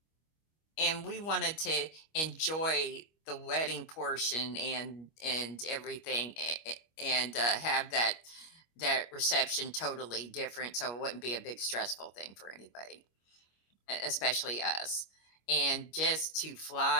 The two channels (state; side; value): late; right; 25 ms